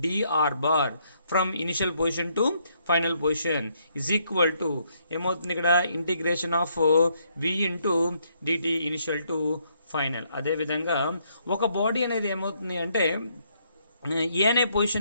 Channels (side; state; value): both; inverted; correlation -0.72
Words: d r bar from initial position to final position is equal to ఏమవుతుంది? ఇక్కడ integration of v into d t initial to final. అదేవిధంగా ఒక బాడీ అనేది ఏమవుతుంది అంటే ఏ అనే